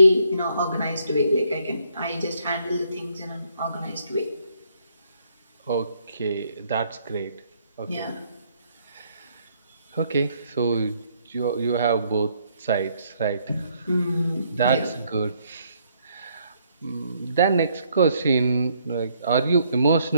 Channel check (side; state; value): both; inverted; correlation -0.70